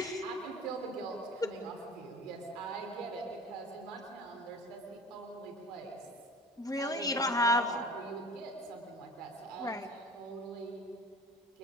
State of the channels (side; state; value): both; normal; correlation 0.41